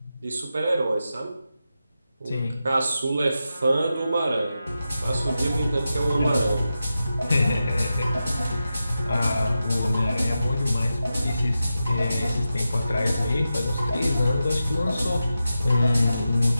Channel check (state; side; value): inverted; both; correlation -0.91